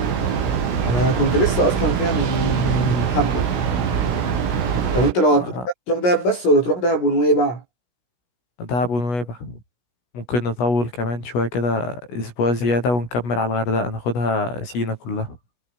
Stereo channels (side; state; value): right; late; 17 ms